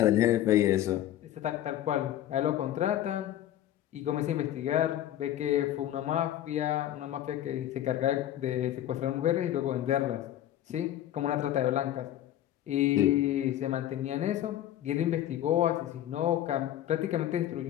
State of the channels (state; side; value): quieter; right; 12.4 dB